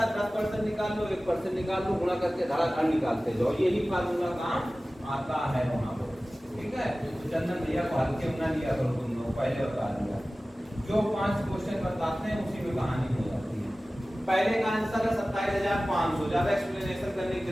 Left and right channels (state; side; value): normal; both; correlation 0.97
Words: 10% निकाल लो, 1% निकाल लो, गुणा करके धड़ाधड़ निकालते जाओ। यही फार्मूला काम आता है वहां पर। ठीक है, तो चंदन भैया को हल्के में ना लिया करो तुम लोग, पहले बता दिया। जो 5 क्वेश्चन बताते हैं उसी में कहानी हो जाती है। पहले का आंसर है 27,500, ज्यादा एक्सप्लेनेशन करने की